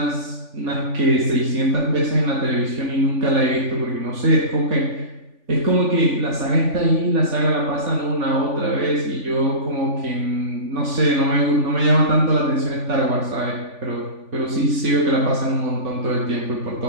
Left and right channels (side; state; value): left; late; 3.5 ms